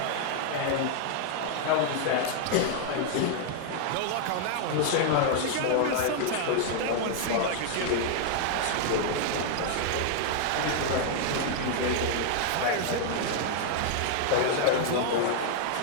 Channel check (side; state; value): both; different; correlation -0.01